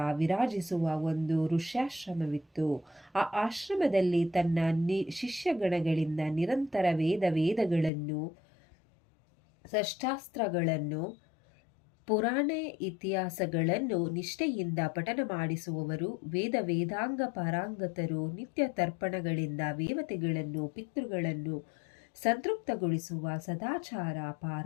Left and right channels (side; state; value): right; drops out; at 7.9 s